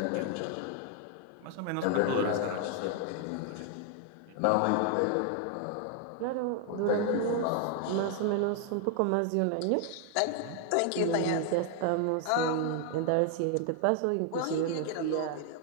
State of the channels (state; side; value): different; both; correlation 0.00